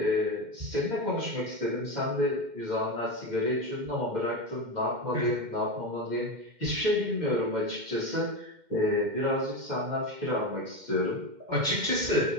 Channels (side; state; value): left; late; 2.1 ms